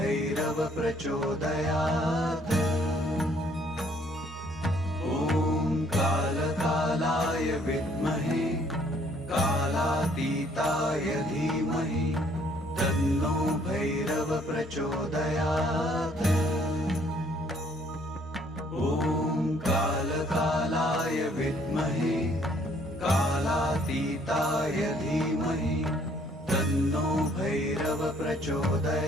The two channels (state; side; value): normal; both; correlation 0.63